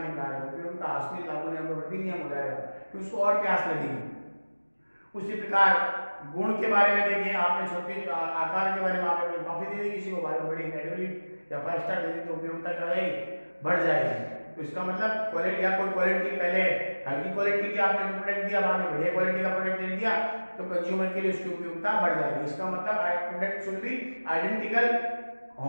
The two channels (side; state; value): both; inverted; correlation -1.00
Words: पिला रहे हो, उपयोगिता असली लागू नियम हो जाएगा कि उसको और प्यास लगेगी। उसी प्रकार गुण के बारे में देखिए, आपने छोटे आकार के बारे में आपने कॉफी दे दी किसी को, बड़ी कैटेगरी या 5 स्टार दे दी, तो उपयोगिता क्या रहेगी, बढ़ जाएगी। तो इसका मतलब क्वालिटी या कोई क्वालिटी, पहले हल्की क्वालिटी की आपने प्रोडक्ट दिया, बाद में बढ़िया क्वालिटी का प्रोडक्ट दे दिया, तो कंज्यूमर के लिए उसकी उपयोगिता बढ़ जाएगी। इसका मतलब product should be identical,